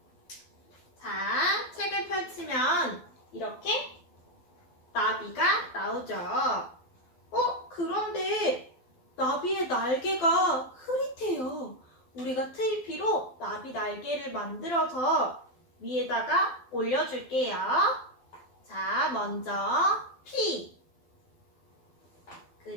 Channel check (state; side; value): late; right; 12 ms